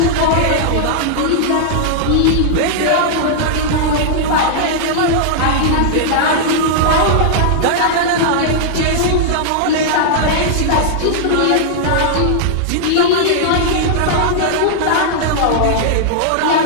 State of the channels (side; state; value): both; different; correlation -0.01